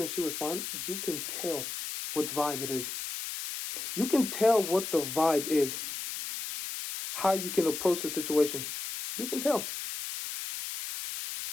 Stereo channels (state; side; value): noise; left; hiss, 6 dB below the sound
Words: and she responds, you can tell what vibe it is. You can tell what the vibe is. How you can approach the situation. You can tell.